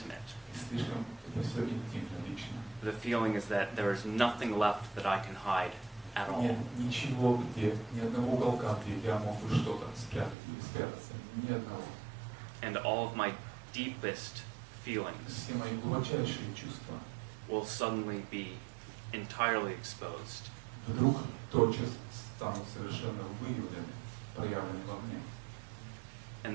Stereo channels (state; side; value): drops out; left; at 10.4 s